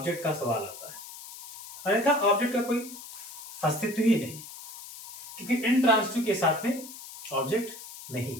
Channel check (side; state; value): left; noise; hiss, 13 dB below the sound